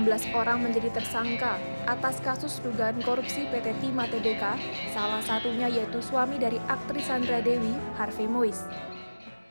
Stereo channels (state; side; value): inverted; both; correlation -1.00